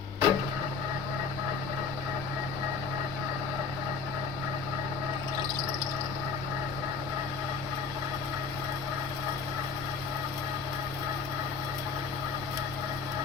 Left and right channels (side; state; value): right; quieter; 5.2 dB